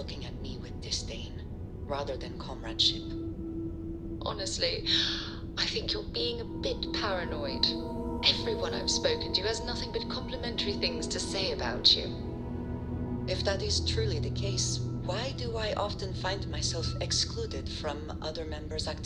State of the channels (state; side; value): identical; both; correlation 1.00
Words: at me with disdain, rather than comradeship. Honestly, I think you're being a bit paranoid. Everyone I've spoken to has nothing but complimentary things to say about you. If that is truly the case, why do I often find myself excluded from other members'